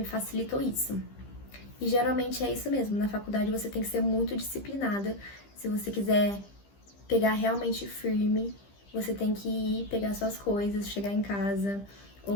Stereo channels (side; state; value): right; late; 15 ms